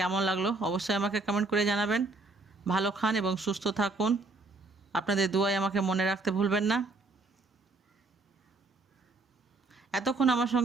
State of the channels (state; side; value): quieter; left; 3.4 dB